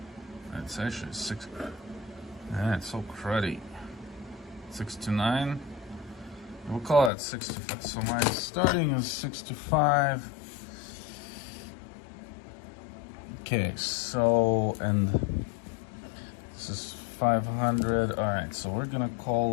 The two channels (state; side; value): drops out; right; at 7.1 s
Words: It's actually 6... it's so cruddy. 629. We'll call it 65. So my starting is 65. Okay, so, and this is 500. All right, so we're gonna